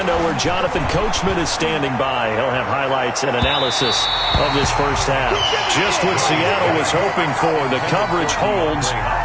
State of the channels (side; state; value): both; identical; correlation 1.00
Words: where Jonathan Coachman is standing by. He'll have highlights and analysis of this first half. Just what Seattle was hoping for. The coverage holds,